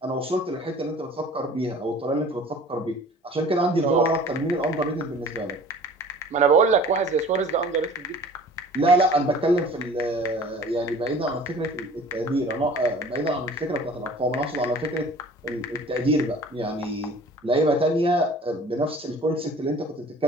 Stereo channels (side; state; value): both; normal; correlation 0.46